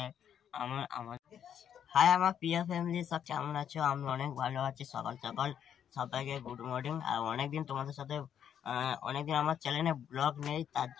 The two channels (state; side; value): quieter; right; 9.1 dB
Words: হাই আমার প্রিয় ফ্যামিলি, সব কেমন আছো? আমি অনেক ভালো আছি। সকাল সকাল সবাইকে গুড মর্নিং। আর অনেকদিন তোমাদের সাথে অনেকদিন আমার চ্যানেলে ব্লগ নেই, তার